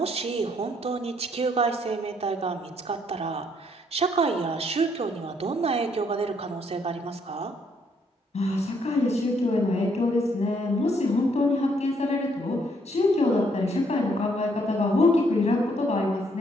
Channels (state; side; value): normal; both; correlation 0.70